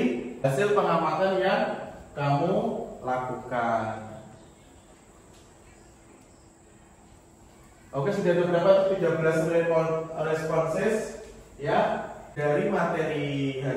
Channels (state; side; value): identical; both; correlation 1.00